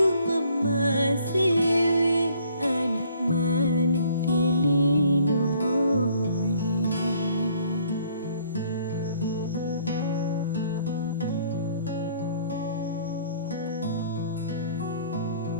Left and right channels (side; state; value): both; inverted; correlation -0.61